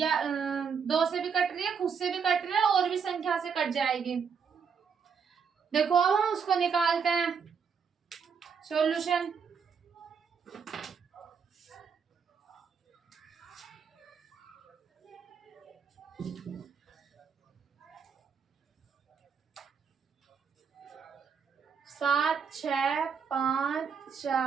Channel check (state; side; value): quieter; left; 6.4 dB